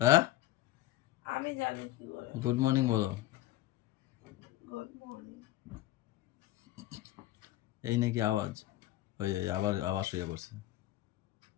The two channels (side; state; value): right; quieter; 15.5 dB